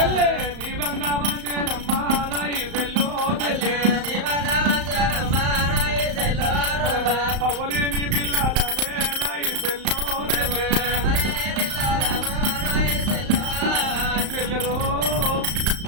నీ బంగా మంచేనమ్మా నా ఈ చెల్లె పవ్వలేని పిల్లలనే నా ఈ చెల్లె చెల్లెలో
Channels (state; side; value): late; left; 35 ms